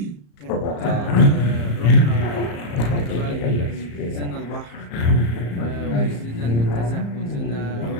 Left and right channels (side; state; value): right; late; 34 ms